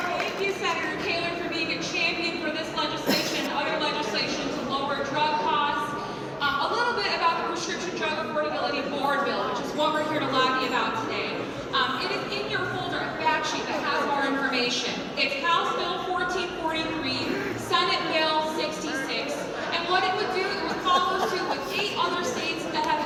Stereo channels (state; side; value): identical; both; correlation 1.00